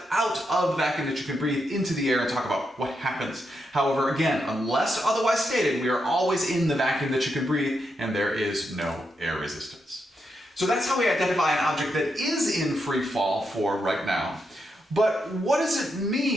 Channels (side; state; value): both; normal; correlation 0.83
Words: out of the vacuum that you can breathe into the air and talk about what happens. However, again, unless otherwise stated, we are always in the vacuum that you can breathe and there is no air resistance. So that's how we identify an object that is in free fall for right now. But what does it